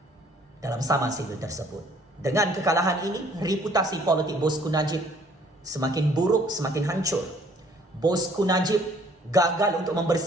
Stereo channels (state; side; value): normal; both; correlation 0.59